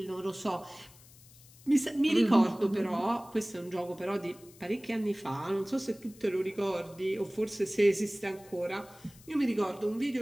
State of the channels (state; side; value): noise; left; hiss, 23 dB below the sound